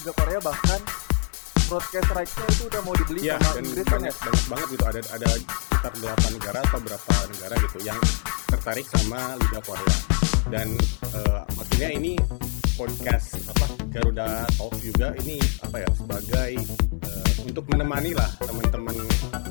Korea bahkan broadcast rights-nya itu udah mau dibeli sama Inggris kan ya? Banyak banget gitu, ada sekitar 8 negara atau berapa negara gitu yang tertarik sama Liga Korea. Dan maksudnya ini podcast Garuda Talks juga ini sebagai untuk menemani lah teman-teman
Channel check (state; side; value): quieter; right; 38.9 dB